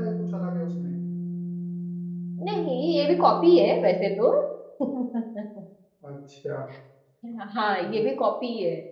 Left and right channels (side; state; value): both; identical; correlation 1.00